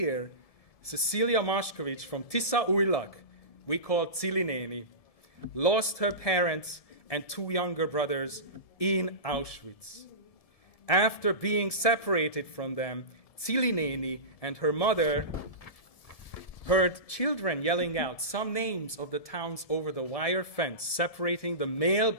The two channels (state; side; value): late; right; 1.7 ms